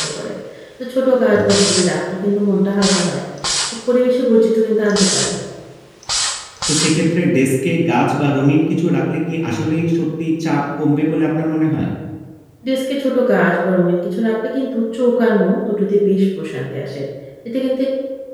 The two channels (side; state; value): both; identical; correlation 1.00